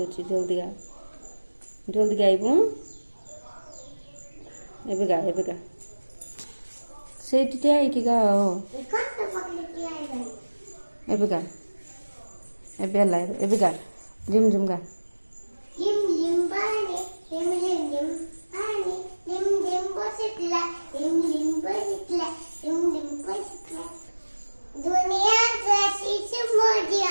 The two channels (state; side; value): inverted; both; correlation -1.00